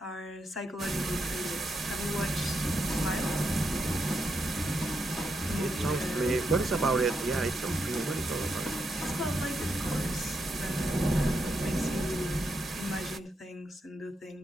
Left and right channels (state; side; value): normal; both; correlation 0.82